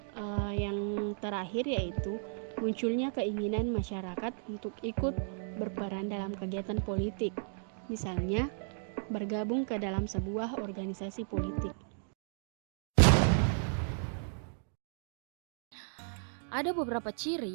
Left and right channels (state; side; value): silent; left; digital silence